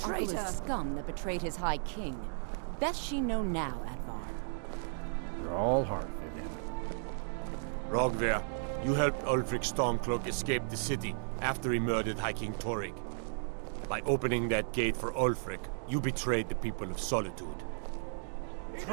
Traitor! is scum that betrayed his High King. Best she know now, Advar. You're all heart, Vivian. Rogvir, you helped Ulfric Stormcloak escape the city after he murdered High King Torrig. By opening that gate for Ulfric, you betrayed the people of Solitude.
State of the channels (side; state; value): left; silent; digital silence